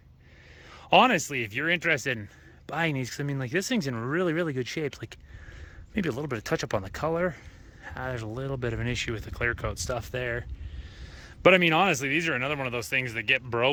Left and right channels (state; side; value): identical; both; correlation 1.00